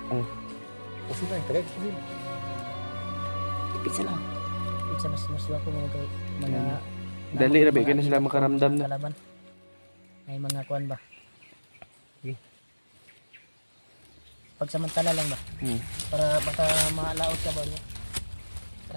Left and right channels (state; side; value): inverted; both; correlation -1.00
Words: Pusin na, tagay pusin. Dipinsa lang. Sa mas ko mga Dali ra ba kay na sila makaramdam na. kalaban. May mga kuan ba? Pagsamantala lang ba? Para baka maalaot ka ba niya.